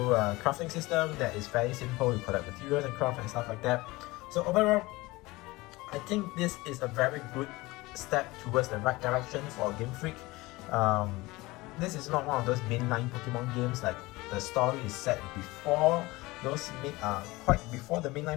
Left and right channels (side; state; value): right; quieter; 21.2 dB